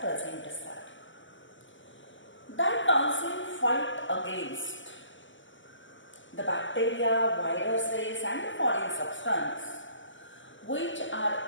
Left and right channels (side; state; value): right; late; 0.55 ms